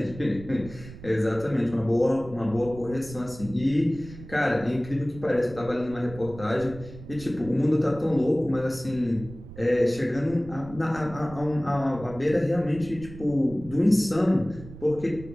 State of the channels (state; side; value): noise; right; rumble, 15 dB below the sound